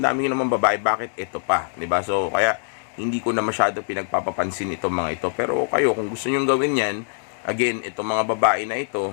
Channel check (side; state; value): right; silent; 63 dB below the other